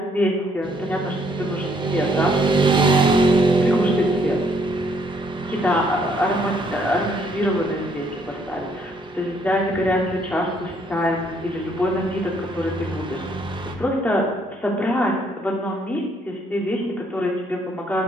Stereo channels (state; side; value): normal; both; correlation 0.68